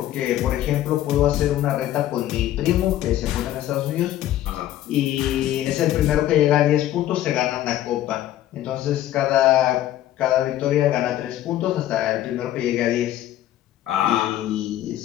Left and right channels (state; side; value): quieter; right; 13.1 dB